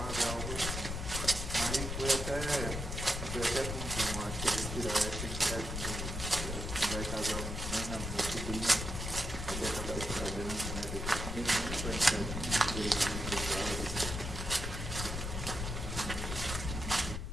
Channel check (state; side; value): noise; left; rumble, 4 dB below the sound